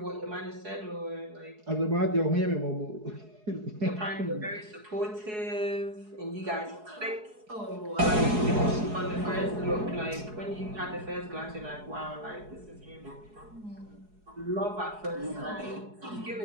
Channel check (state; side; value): late; left; 4.7 ms